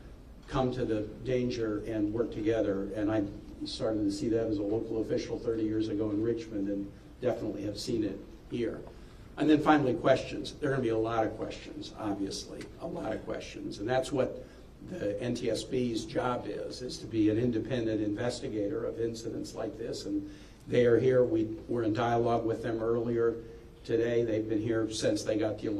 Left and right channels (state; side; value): identical; both; correlation 1.00